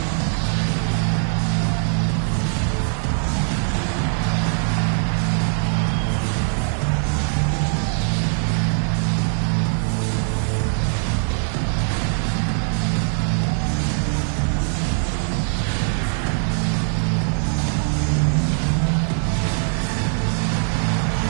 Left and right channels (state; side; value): silent; left; 58 dB below the other